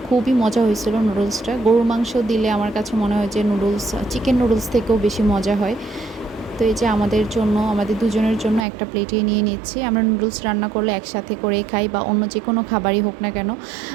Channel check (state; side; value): drops out; left; at 8.7 s